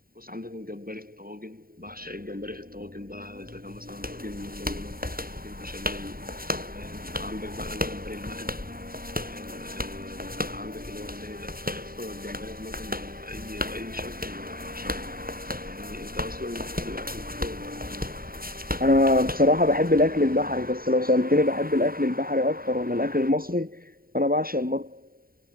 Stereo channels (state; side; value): late; left; 0.43 ms